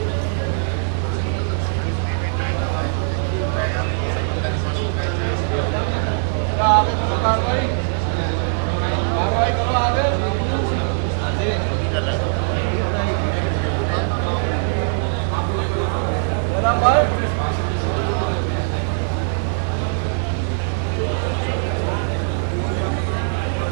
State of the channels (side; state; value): left; silent; digital silence